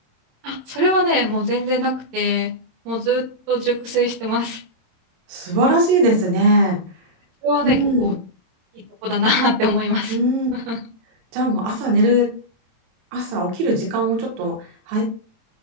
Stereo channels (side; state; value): left; late; 26 ms